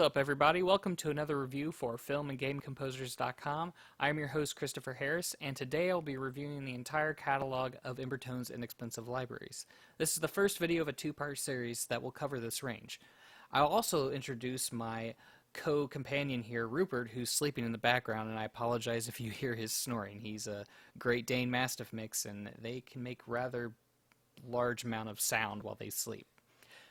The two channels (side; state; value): both; identical; correlation 1.00